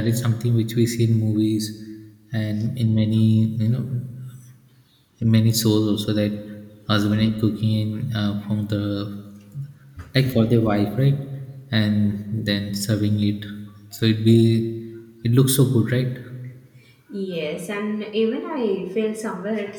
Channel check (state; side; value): identical; both; correlation 1.00